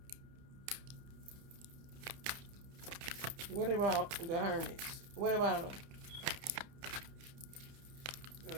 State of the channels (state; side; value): late; left; 30 ms